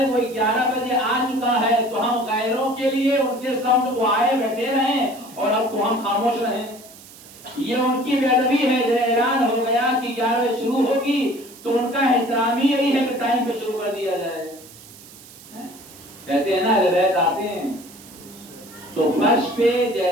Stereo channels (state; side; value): noise; right; hiss, 20 dB below the sound